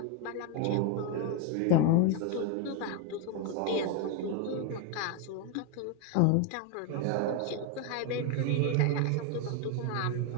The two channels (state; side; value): different; both; correlation 0.01